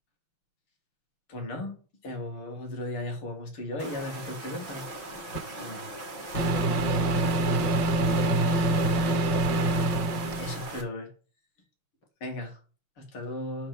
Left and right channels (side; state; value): right; late; 6.0 ms